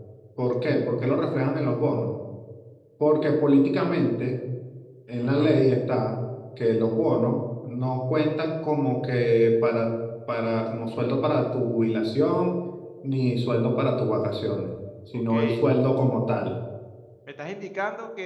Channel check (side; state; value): both; identical; correlation 1.00